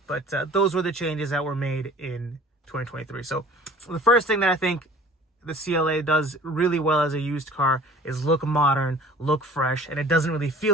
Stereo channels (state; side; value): normal; both; correlation 0.47